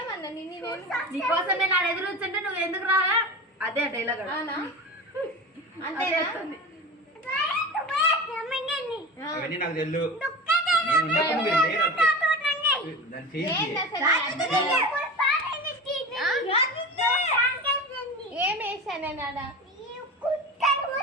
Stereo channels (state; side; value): normal; both; correlation 0.30